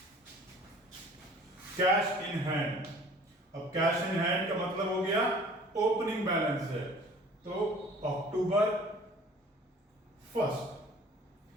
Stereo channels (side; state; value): both; normal; correlation 0.49